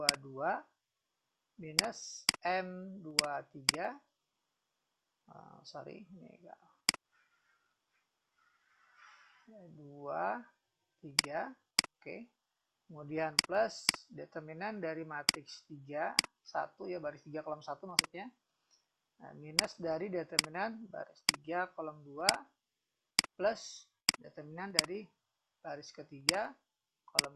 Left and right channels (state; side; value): identical; both; correlation 1.00